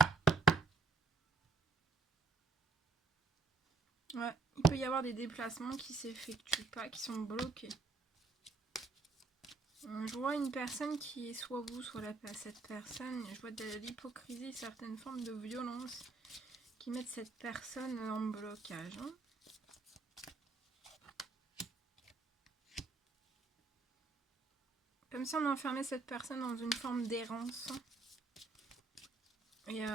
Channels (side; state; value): left; quieter; 4.2 dB